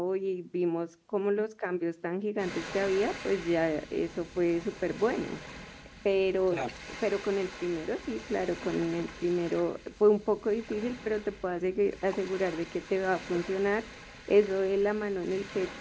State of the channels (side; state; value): both; identical; correlation 1.00